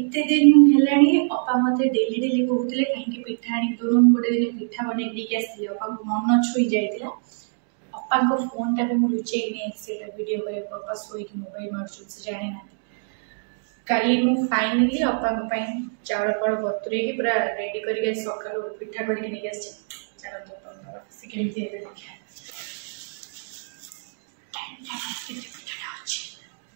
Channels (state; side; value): silent; left; digital silence